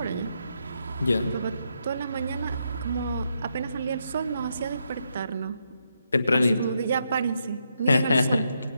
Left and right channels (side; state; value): both; inverted; correlation -0.80